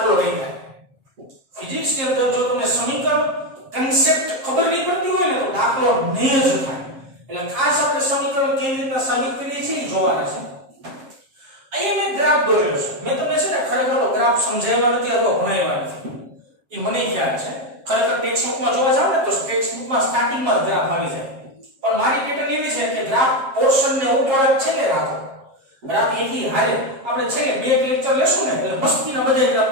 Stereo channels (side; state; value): left; late; 7.5 ms